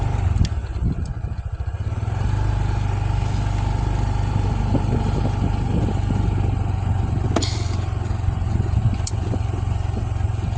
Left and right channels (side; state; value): both; identical; correlation 1.00